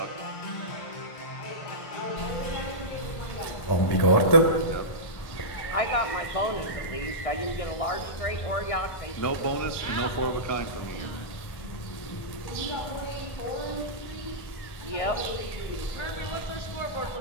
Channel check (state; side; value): late; right; 1.5 ms